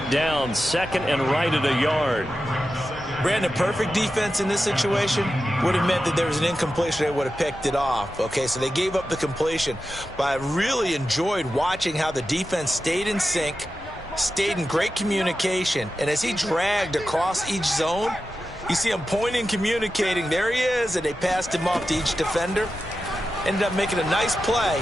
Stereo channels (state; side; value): normal; both; correlation 0.91